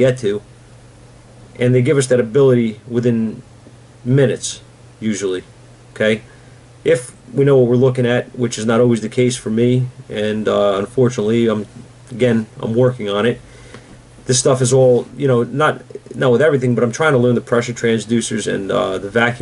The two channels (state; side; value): identical; both; correlation 1.00